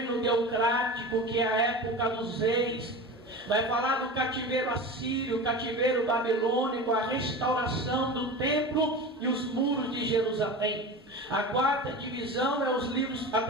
teocrático, que é a época dos reis. Vai falar do cativeiro assírio, cativeiro babilônico, a restauração do templo e os muros de Jerusalém. A quarta divisão é os livros, a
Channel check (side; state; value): both; normal; correlation 0.30